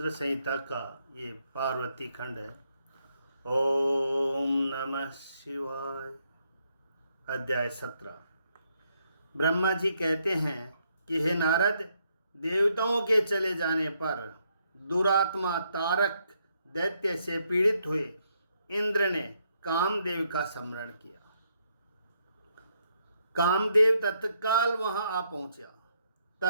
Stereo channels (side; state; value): both; inverted; correlation -0.75